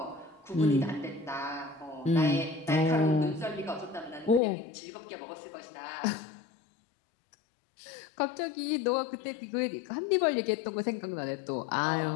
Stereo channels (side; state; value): right; drops out; at 4.4 s